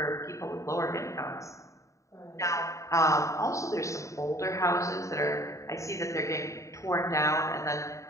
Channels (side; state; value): right; late; 0.15 ms